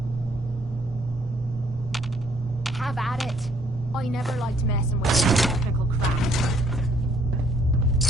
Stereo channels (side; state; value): both; normal; correlation 0.65